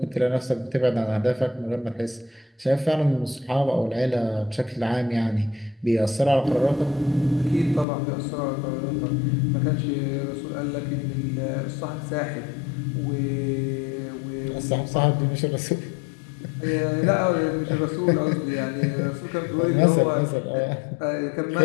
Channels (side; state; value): right; drops out; at 7.9 s